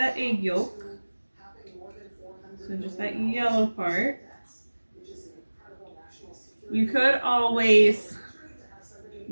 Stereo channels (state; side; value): inverted; both; correlation -1.00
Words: egg yolk, so just that yellow part, you could always,